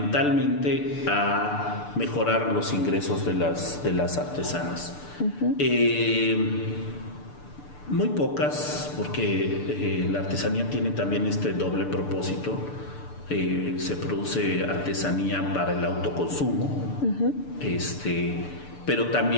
a mejorar los ingresos de las artesanas. Muy pocas, porque la artesanía tiene también este doble propósito. Se produce artesanía para el autoconsumo, pero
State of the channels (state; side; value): late; right; 6.8 ms